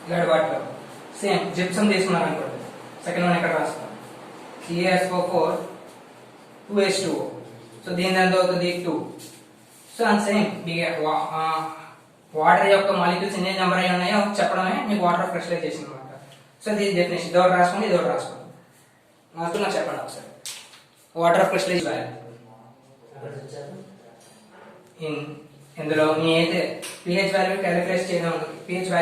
ఇలాంటి వాటిలో సేమ్ జిప్సమ్ తీసుకున్నారు అనుకోండి. సెకండ్ వన్ ఎక్కడ రాస్తాం? CaSO4 2H2O. సో దీని ఎంత అవుతుంది? 2. సో అండ్ సేమ్ వాటర్ యొక్క మాలిక్యూల్స్ ఎన్ని నెంబర్ అయి ఉన్నాయో చెప్పడమే మీకు వాటర్ ఆఫ్ క్రిస్టలైజేషన్ అనమాట. సో దీని డెఫినేషన్ ఇది ఒకటి రాసుకోండి, ఇది ఒకటి రాసుకోండి. నాకు చెప్పండి ఒకసారి. వాటర్ ఆఫ్ క్రిస్టలైజేషన్ ఇందులో మీ అయితే pH వాల్యూ క్యాలిక్యులేట్ చేయడం ఉంటుంది. pH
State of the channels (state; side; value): identical; both; correlation 1.00